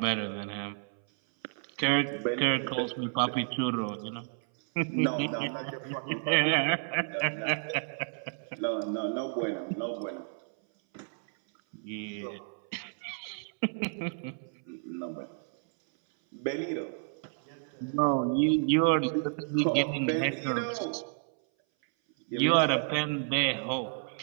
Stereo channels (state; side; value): silent; left; 57 dB below the other